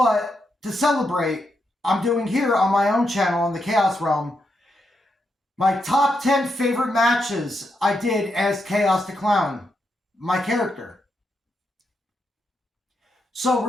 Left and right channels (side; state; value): both; normal; correlation 0.83